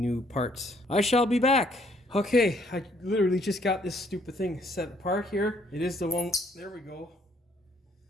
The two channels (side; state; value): both; normal; correlation 0.66